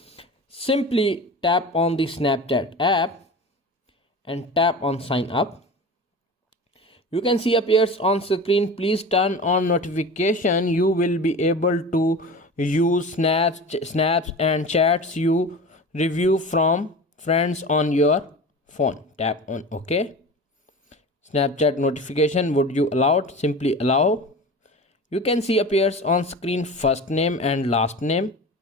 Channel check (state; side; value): normal; both; correlation 0.33